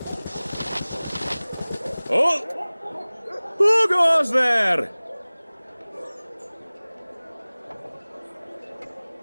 Oh! Who goes there?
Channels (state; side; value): inverted; both; correlation -1.00